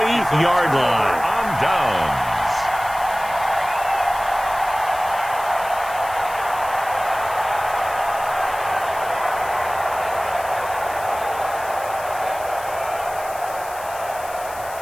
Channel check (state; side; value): noise; left; hiss, 16 dB below the sound